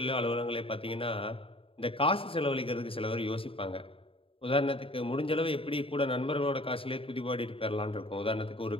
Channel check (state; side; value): late; right; 0.27 ms